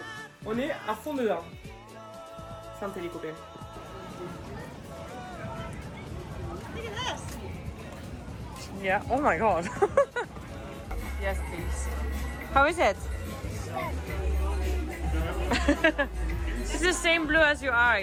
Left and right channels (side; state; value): both; identical; correlation 1.00